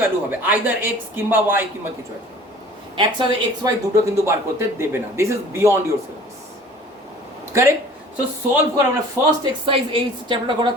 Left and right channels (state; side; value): normal; both; correlation 0.47